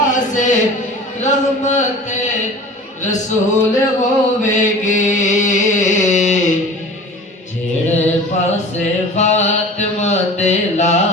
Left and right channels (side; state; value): both; normal; correlation 0.40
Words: رحمت رسول ہوے گی جڑے پاسے فاطمہ دے